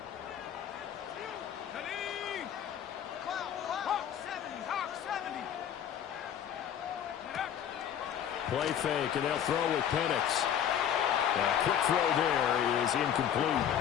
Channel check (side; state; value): right; quieter; 9.4 dB